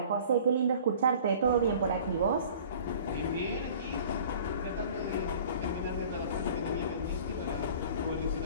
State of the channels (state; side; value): inverted; both; correlation -0.47